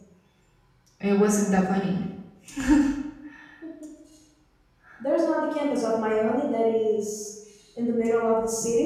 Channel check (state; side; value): identical; both; correlation 1.00